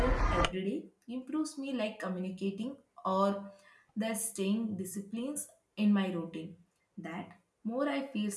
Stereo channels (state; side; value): identical; both; correlation 1.00